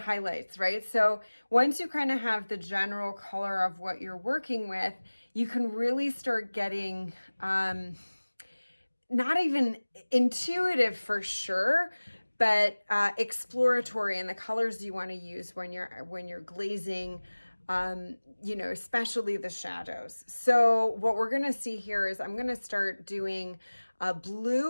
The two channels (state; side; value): inverted; both; correlation -1.00